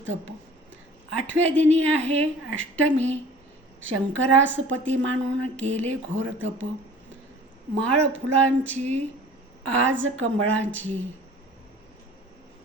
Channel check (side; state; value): both; normal; correlation 0.46